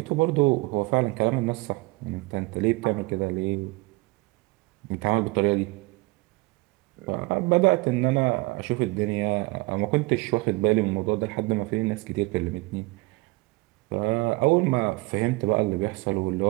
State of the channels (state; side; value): quieter; left; 24.0 dB